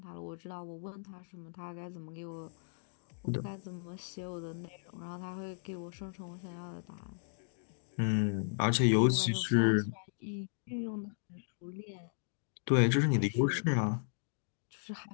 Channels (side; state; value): right; silent; digital silence